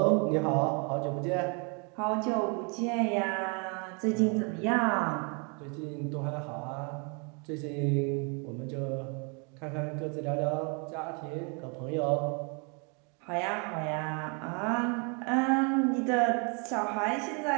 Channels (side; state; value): left; quieter; 35.1 dB